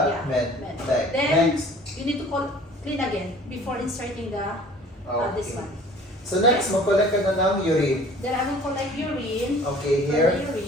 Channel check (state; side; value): normal; both; correlation 0.49